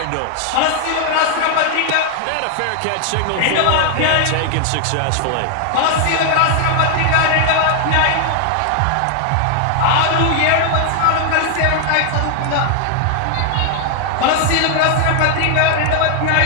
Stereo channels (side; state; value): both; different; correlation 0.00